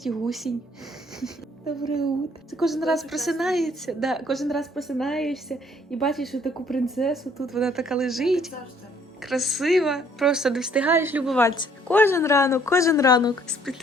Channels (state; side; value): normal; both; correlation 0.62